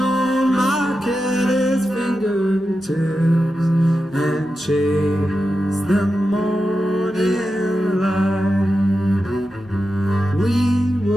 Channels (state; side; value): normal; both; correlation 0.90